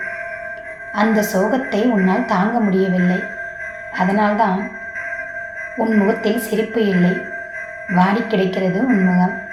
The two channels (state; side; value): identical; both; correlation 1.00